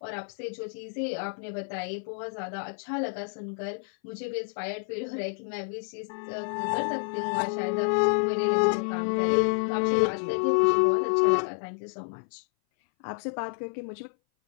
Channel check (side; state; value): right; silent; 58 dB below the other